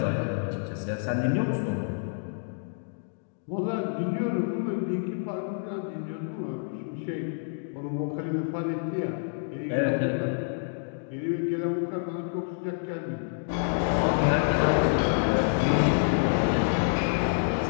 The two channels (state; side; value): silent; right; digital silence